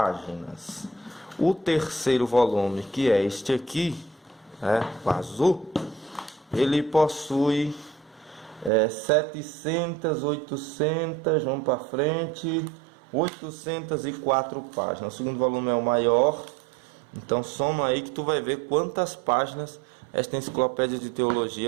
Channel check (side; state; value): left; drops out; at 8.7 s